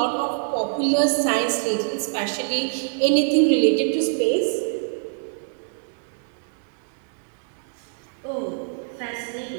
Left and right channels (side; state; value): left; silent; digital silence